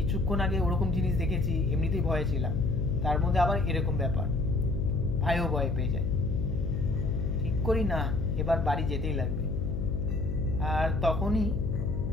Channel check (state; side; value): noise; left; hum, 3 dB below the sound